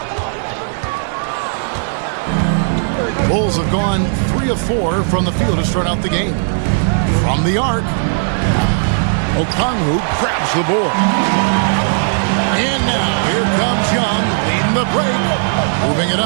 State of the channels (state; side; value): silent; left; digital silence